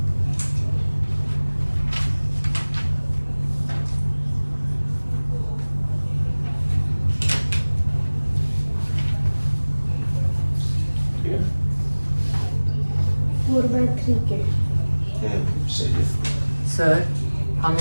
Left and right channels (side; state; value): both; inverted; correlation -1.00